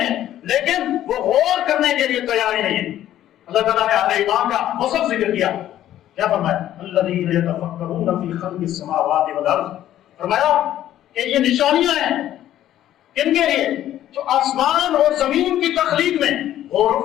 لیکن وہ غور کرنے کے لیے تیار ہی نہیں ہے. اللہ تعالیٰ نے اہل ایمان کا وصف ذکر کیا، کیا فرمایا الذین یتفکرون فی خلق السماوات والارض. فرمایا کہ یہ نشانیاں ہیں کن کے لیے؟ جو آسمان اور زمین کی تخلیق میں غور و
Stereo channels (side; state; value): right; quieter; 12.4 dB